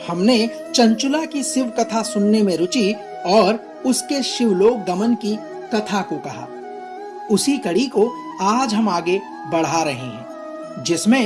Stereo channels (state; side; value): identical; both; correlation 1.00